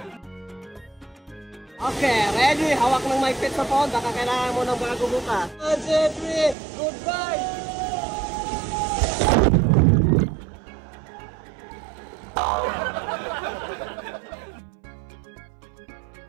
Okay, ready? Hawak ng mic pit sa phone. Baka kailangan mo ng bago bukas. 1, 2, 3, goodbye!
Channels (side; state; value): left; drops out; at 6.6 s